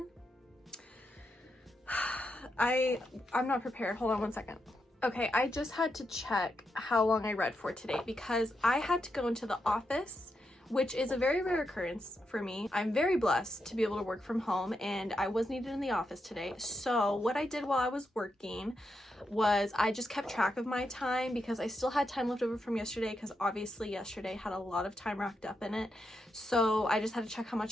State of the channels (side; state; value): both; normal; correlation 0.84